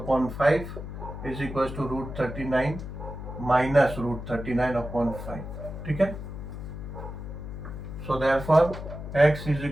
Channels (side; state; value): left; noise; hum, 9 dB below the sound